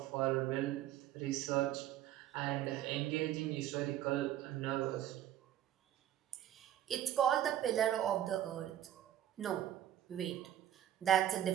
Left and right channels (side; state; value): left; quieter; 11.8 dB